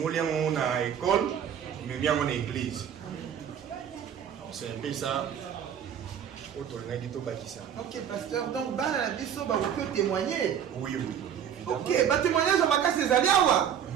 on a école, mais bien on a église. C'est un peu ça. Ok, pasteur, donc, la biso, vous pouvez témoigner. Oui, oui. Ok, témoignage, on va casser les aliawa.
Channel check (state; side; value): quieter; left; 8.8 dB